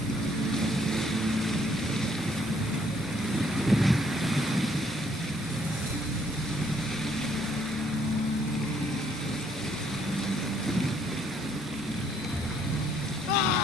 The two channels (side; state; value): both; normal; correlation 0.66